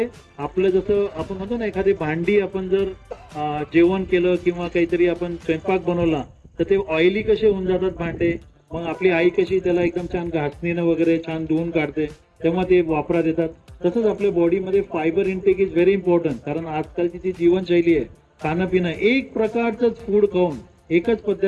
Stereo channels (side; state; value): both; identical; correlation 1.00